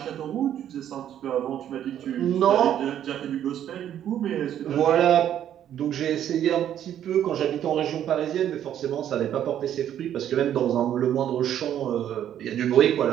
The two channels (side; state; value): left; quieter; 10.5 dB